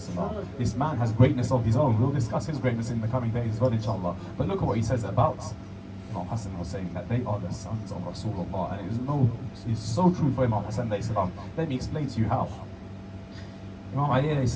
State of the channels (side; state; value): both; identical; correlation 1.00